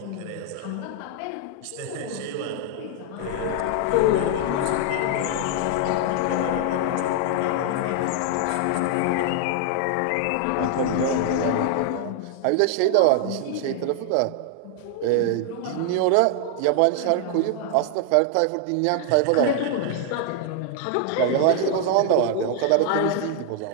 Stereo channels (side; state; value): both; different; correlation 0.00